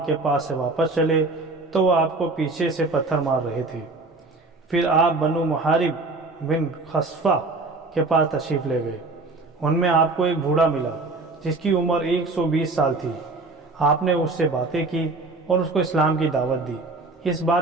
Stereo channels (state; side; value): quieter; left; 3.4 dB